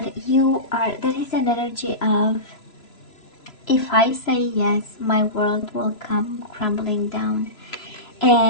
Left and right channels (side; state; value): right; late; 3.0 ms